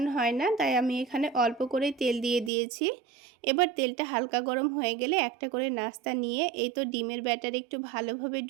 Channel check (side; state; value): left; drops out; at 2.5 s